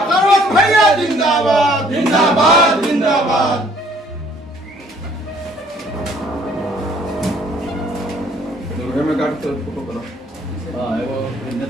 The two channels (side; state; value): both; normal; correlation 0.60